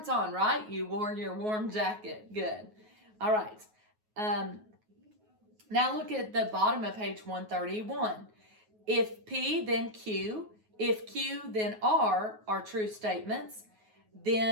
on, right? You wore your warm jacket. Good. All right. Now look at the bottom of page 131. If P, then Q. If Q, then R are true statements,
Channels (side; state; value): left; late; 9.4 ms